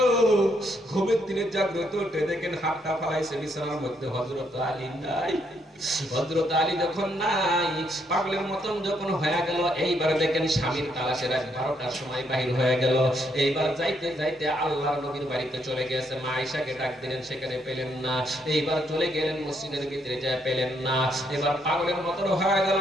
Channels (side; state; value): both; normal; correlation 0.74